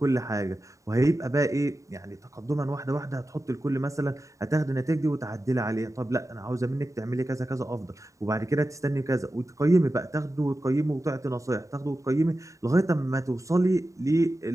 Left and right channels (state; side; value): late; left; 0.16 ms